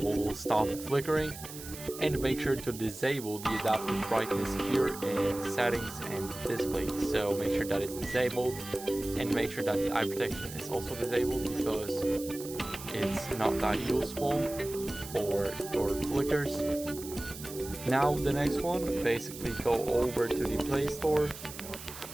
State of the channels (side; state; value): right; noise; hiss, 13 dB below the sound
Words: stop the flickering. And make sure to disable the adaptive brightness here in settings and display. So make sure that it's disabled, and make sure that the eye protection is also disabled, because it's not that useful for your flickers. Now the next one, basically go over to the Play Store